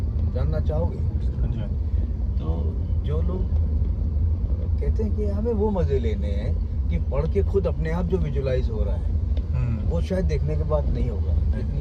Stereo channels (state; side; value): identical; both; correlation 1.00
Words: चाहोगे? तो जो लोग कहते हैं कि हमें वो मज़े लेने हैं कि पढ़ के खुद अपने आप जो विजुलाइज हो रहा है, वो शायद देखने के बाद नहीं होगा।